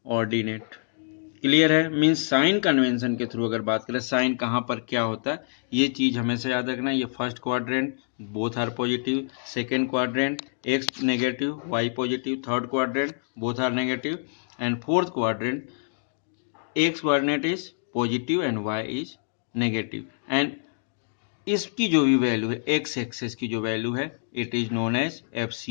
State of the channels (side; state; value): right; silent; digital silence